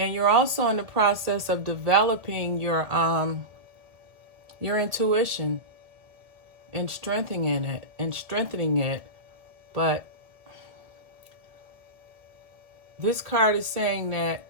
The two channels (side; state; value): left; late; 1.7 ms